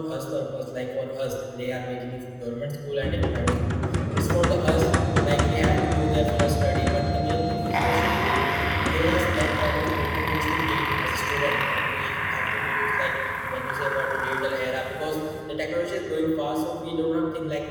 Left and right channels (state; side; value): identical; both; correlation 1.00